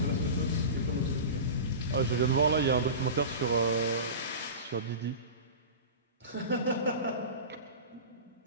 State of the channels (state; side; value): inverted; both; correlation -0.30